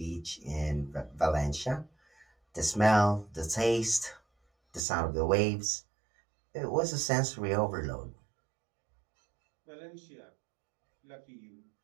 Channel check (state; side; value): drops out; left; at 4.8 s